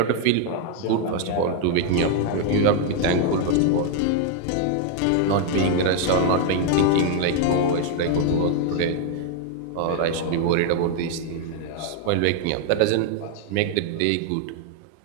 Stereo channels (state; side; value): different; both; correlation 0.00